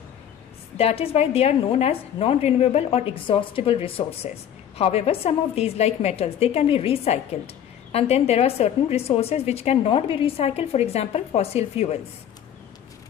That is why they are known as non-renewable or exhaustible resources. However, some of these like metals, they can be recycled. And then there are certain resources which cannot be recycled, for example, fossil fuels.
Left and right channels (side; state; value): right; quieter; 9.7 dB